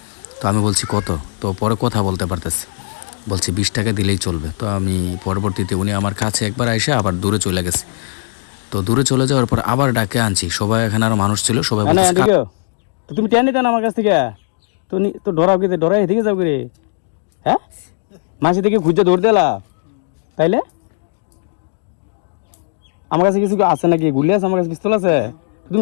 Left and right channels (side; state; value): right; silent; digital silence